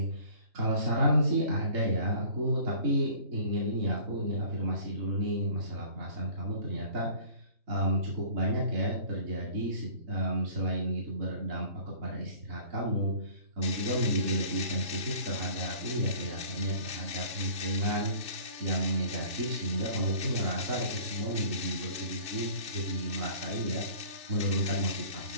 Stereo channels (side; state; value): left; late; 2.7 ms